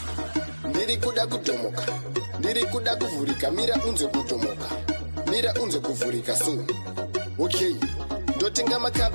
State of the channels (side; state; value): both; inverted; correlation -1.00